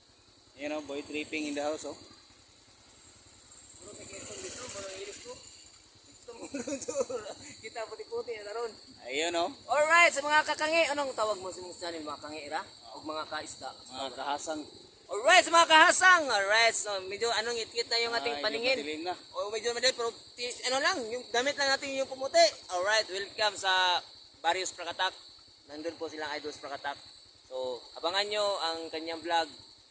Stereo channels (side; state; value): both; identical; correlation 1.00